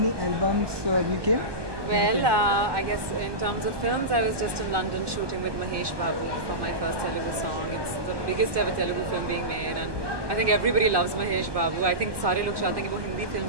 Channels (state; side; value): late; left; 1.2 ms